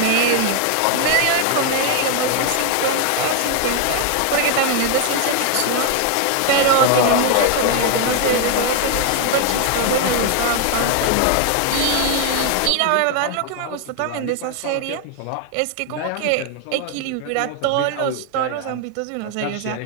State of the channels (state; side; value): different; both; correlation 0.01